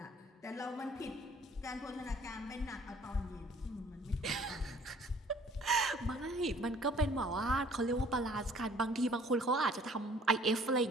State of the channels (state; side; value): normal; both; correlation 0.55